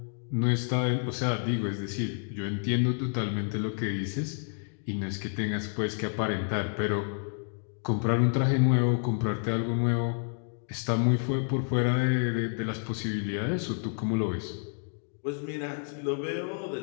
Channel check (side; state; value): right; silent; 55 dB below the other